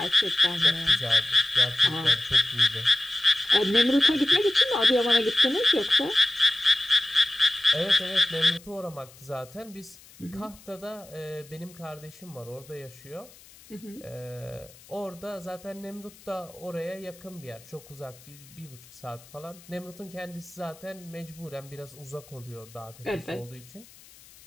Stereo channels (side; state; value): left; noise; hiss, 23 dB below the sound